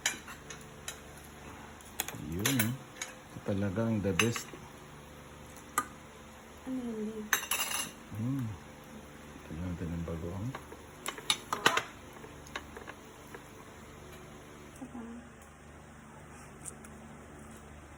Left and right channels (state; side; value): identical; both; correlation 1.00